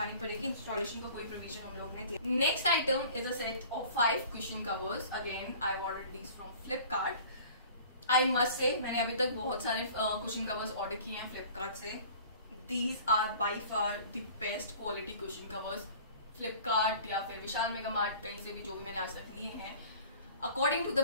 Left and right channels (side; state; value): both; inverted; correlation -0.46